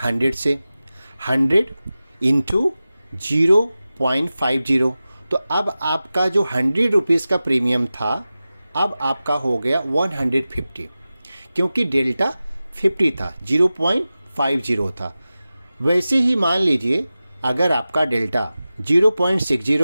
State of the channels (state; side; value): inverted; both; correlation -0.95